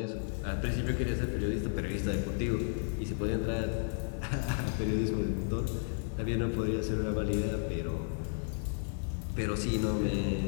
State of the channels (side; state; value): right; silent; digital silence